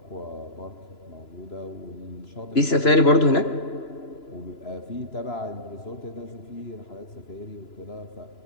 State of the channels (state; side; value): late; right; 3.0 ms